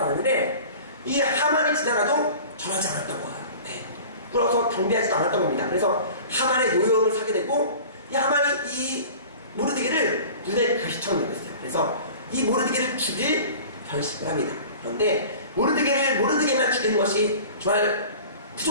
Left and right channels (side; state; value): both; inverted; correlation -0.41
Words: 않았는데, 이 하만이 지나가도 절하지 않았던 거예요. 꿇어서 경배하지도 않았던 겁니다. 그래서 하만의 노여움을 사게 되고, 이 하만이 이 모르드게를 눈에 가시처럼 여겼어요. 그래서 이 모르드게를 죽일 결심을 합니다. 그런데 모르드게만 죽이는 것이 정말